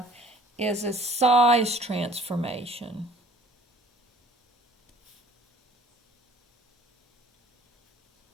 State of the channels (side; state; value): both; normal; correlation 0.52